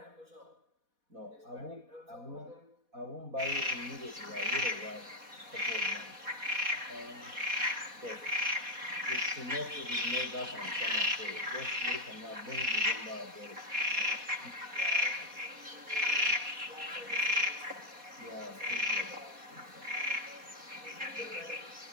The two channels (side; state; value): left; late; 4.1 ms